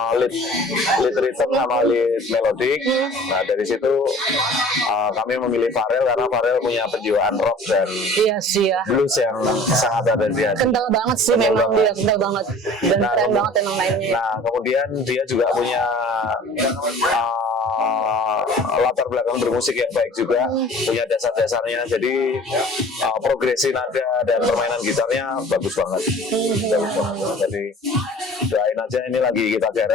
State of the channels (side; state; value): both; normal; correlation 0.46